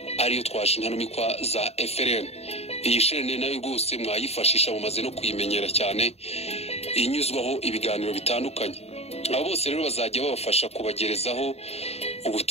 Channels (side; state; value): right; late; 0.30 ms